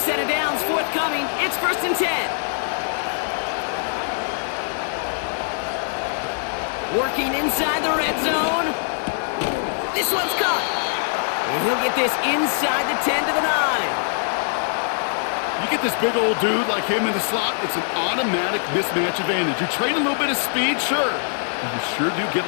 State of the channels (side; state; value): right; silent; digital silence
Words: of downs forthcoming. It's 1st and 10. Working inside the red zone. This one's caught. And he'll get this inside the 10 to the 9. You get this big old dude like him in the slot, it's an automatic mismatch advantage. You trade a little bit of speed, sure. But you sure do get